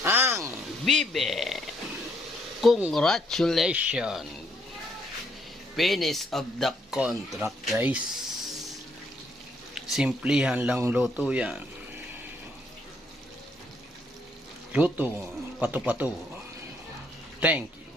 Ang bibe. Congratulations. Finish of the contract guys. Simplihan lang luto yan. Luto, pato-pato. Thank you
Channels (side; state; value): both; normal; correlation 0.71